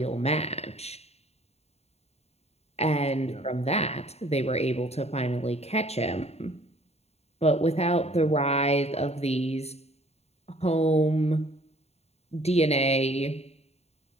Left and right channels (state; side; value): late; right; 0.30 ms